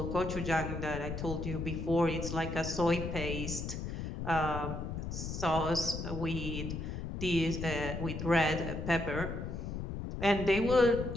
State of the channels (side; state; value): left; noise; rumble, 5 dB below the sound